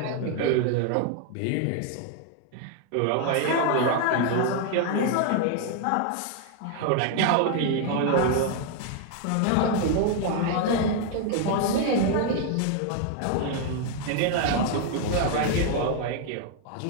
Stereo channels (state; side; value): different; both; correlation 0.00